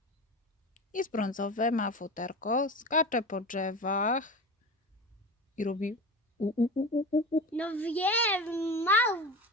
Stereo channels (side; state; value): both; normal; correlation 0.29